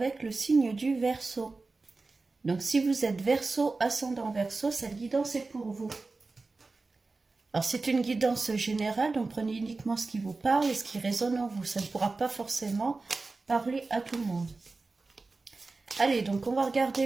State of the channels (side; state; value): left; quieter; 3.7 dB